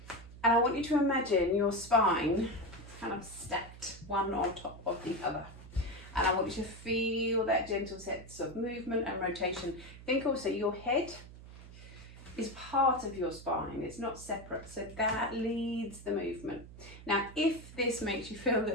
And I want you to imagine your spine kind of stacked one on top of the other. And I want you to feel that gentle sense of movement and rotation. Think also your head is part of your spine. It's not separate. So that leads the movement. Now, if this makes you feel a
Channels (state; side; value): noise; right; hum, 16 dB below the sound